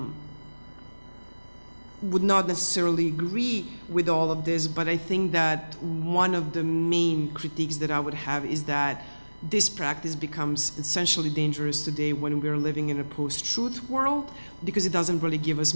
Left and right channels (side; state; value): both; inverted; correlation -1.00